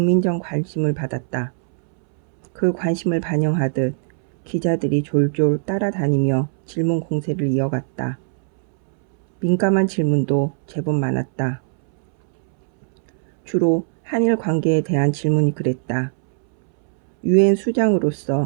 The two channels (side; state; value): left; silent; 66 dB below the other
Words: 관심을 받았다. 그 관심을 반영하듯 기자들이 졸졸 따라다니며 질문 공세를 이어갔다. 민감한 질문도 제법 많았다. 주로 한일 관계에 대한 질문이 그랬다. 유엔